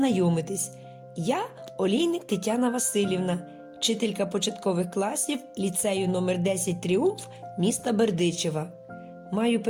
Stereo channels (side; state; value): both; identical; correlation 1.00